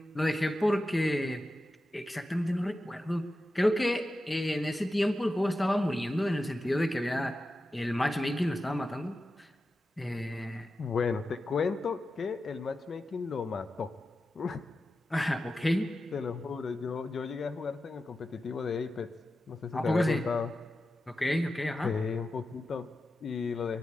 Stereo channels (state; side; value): normal; both; correlation 0.92